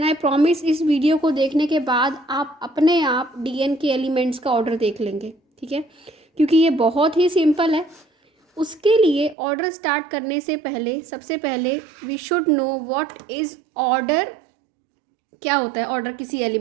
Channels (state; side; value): drops out; left; at 9.3 s